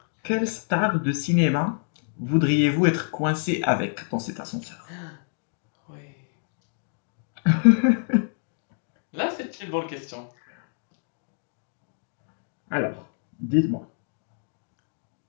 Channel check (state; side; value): silent; right; 60 dB below the other